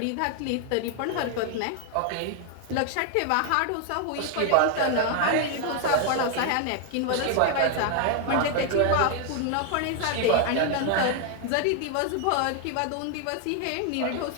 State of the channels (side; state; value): both; different; correlation 0.00